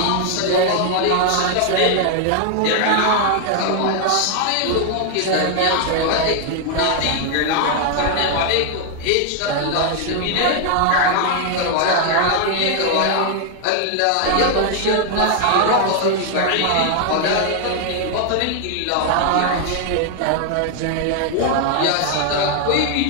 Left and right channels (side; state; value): both; different; correlation 0.00